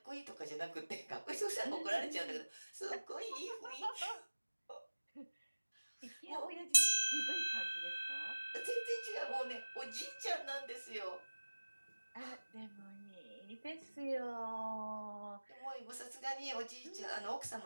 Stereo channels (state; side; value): inverted; both; correlation -1.00